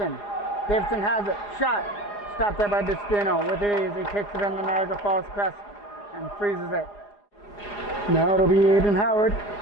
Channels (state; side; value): late; right; 4.9 ms